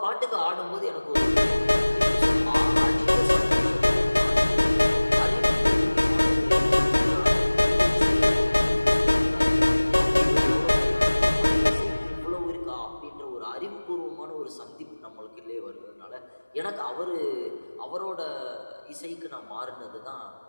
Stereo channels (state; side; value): inverted; both; correlation -1.00